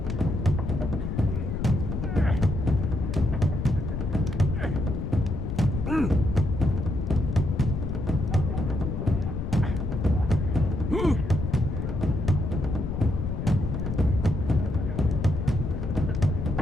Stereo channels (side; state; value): left; noise; rumble, 3 dB below the sound